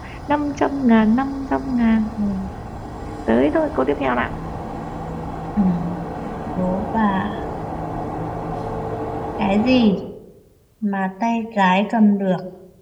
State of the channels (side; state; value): both; identical; correlation 1.00